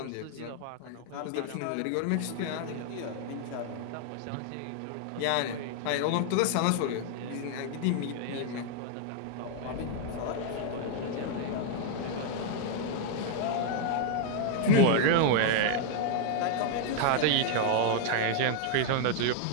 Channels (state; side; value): different; both; correlation 0.00